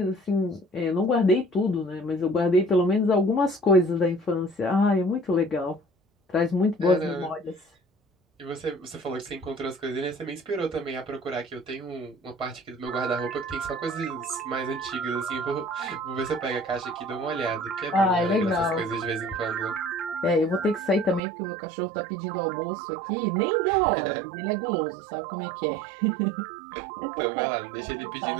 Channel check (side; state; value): left; drops out; at 21.2 s